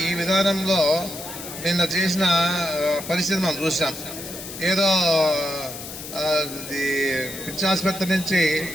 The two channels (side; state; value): left; noise; hiss, 11 dB below the sound